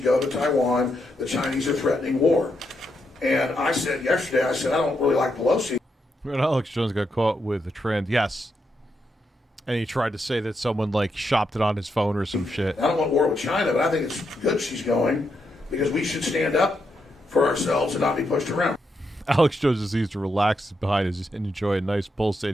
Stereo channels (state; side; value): normal; both; correlation 0.82